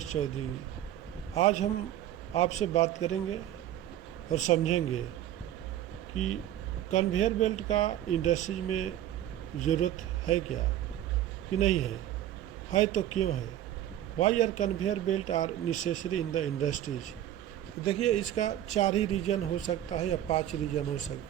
चौधरी। आज हम आपसे बात करेंगे और समझेंगे कि कन्वेयर बेल्ट का इंडस्ट्रीज में ज़रूरत है क्या कि नहीं है तो क्यों है। Why are conveyor belt are necessary in the industries. देखिए, इसका 4 ही रीज़न हो सकता है या 5 रीज़न हो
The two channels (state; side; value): quieter; left; 12.2 dB